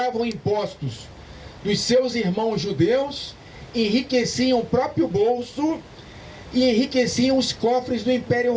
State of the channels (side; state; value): both; identical; correlation 1.00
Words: impostos dos seus irmãos judeus, enriqueciam o próprio bolso e enriqueciam os cofres do Império